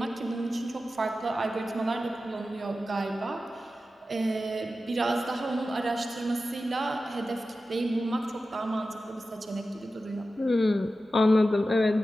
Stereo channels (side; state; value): both; normal; correlation 0.93